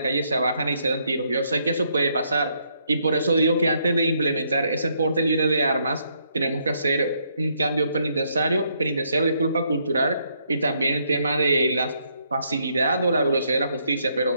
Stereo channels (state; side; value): inverted; both; correlation -0.73